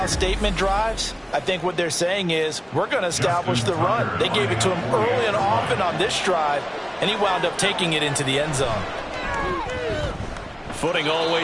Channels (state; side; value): identical; both; correlation 1.00